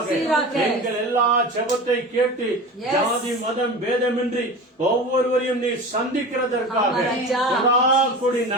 எங்கள் எல்லா ஜெபத்தை கேட்டு ஜாதி மதம் பேதமின்றி ஒவ்வொருவரையும் நீ சந்திக்கிறதற்காக கொடி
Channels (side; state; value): both; normal; correlation 0.32